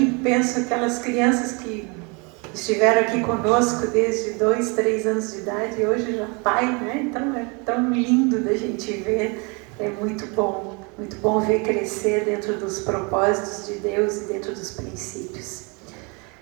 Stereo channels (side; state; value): left; quieter; 31.2 dB